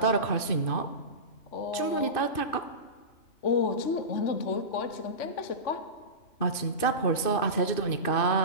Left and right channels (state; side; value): late; right; 2.6 ms